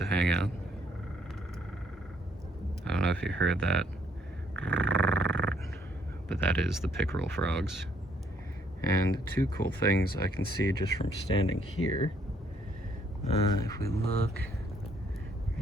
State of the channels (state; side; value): normal; both; correlation 0.68